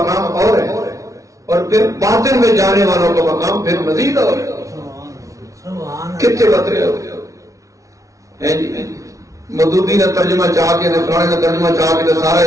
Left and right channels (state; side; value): late; left; 0.16 ms